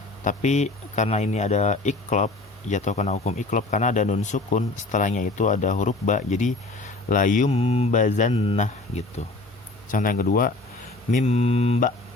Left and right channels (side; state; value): right; quieter; 3.2 dB